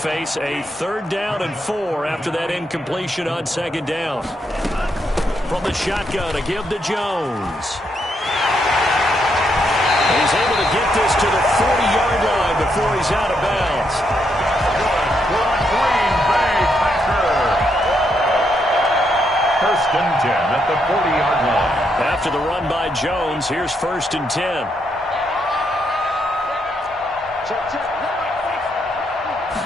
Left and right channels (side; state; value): both; normal; correlation 0.78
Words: a 3rd down and 4 after that incompletion on second down. From the shotgun to give to Jones. And he's able to get this to the 40-yard line before he's out of bounds. Green Bay Packers. 1st and 10 at the 40-yard line. After the run by Jones, here's 1st and 10.